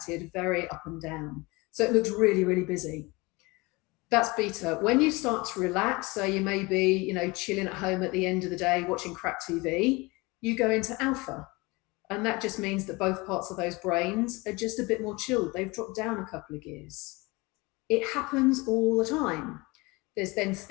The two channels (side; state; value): right; quieter; 24.5 dB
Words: very up and down. So it looks really, really busy. That's beta. When you start to relax, so you may be, chilling at home at the end of the day, watching crap TV, you go into alpha. And that just means that both parts of those brains are just a bit more chilled. They've dropped down a couple of gears. It happens all the time. There's then